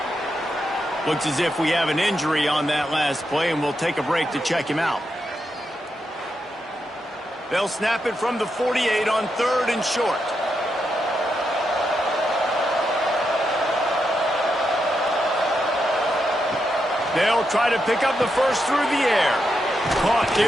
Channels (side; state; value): both; normal; correlation 0.84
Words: Looks as if we have an injury on that last play, and we'll take a break to check him out. They'll snap it from the 48 on 3rd and short. They'll try to pick up the first through the air. Caught